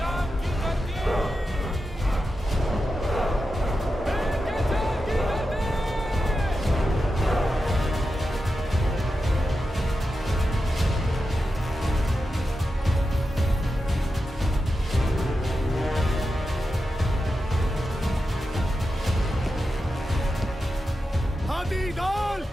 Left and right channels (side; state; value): both; normal; correlation 0.90